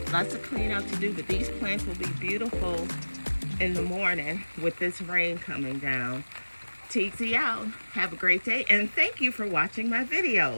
Lots of clean out to do, but these plants will be beautiful in the morning with this rain coming down. TZ out. Have a great day, and thank you for watching my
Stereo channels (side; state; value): both; inverted; correlation -1.00